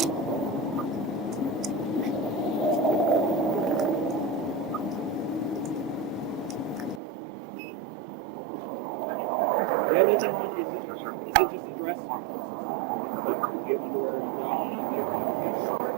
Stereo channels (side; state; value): left; drops out; at 7.0 s